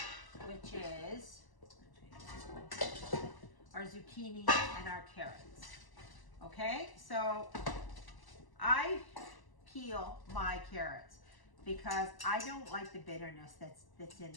which is our zucchini and our carrots. Okay, so I peel my carrots because I don't like the bitterness that's in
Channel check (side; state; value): right; late; 1.0 ms